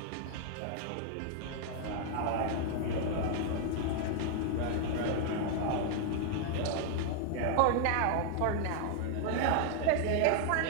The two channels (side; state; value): both; different; correlation 0.00